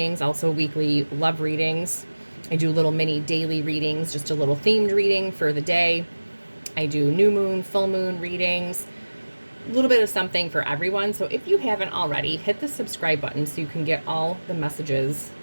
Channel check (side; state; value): both; inverted; correlation -1.00